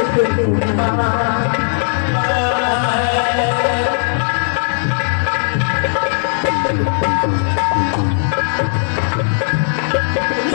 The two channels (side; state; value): right; silent; digital silence